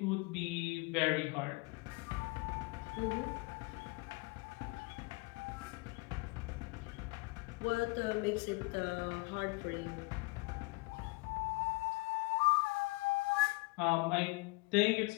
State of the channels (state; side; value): quieter; right; 26.3 dB